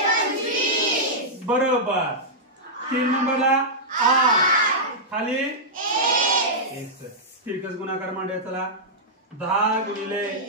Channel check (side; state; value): both; normal; correlation -0.10